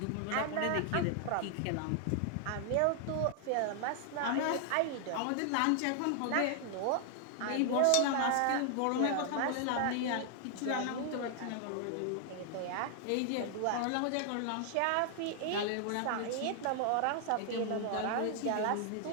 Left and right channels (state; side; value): different; both; correlation 0.00